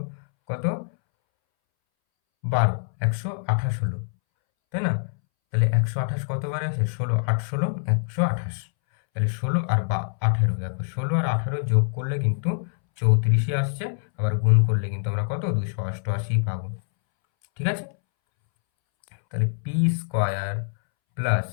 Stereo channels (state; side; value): silent; right; 62 dB below the other